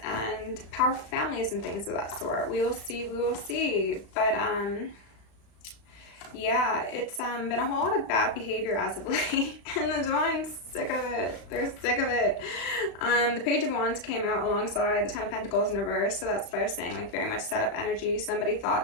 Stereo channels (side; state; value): right; late; 36 ms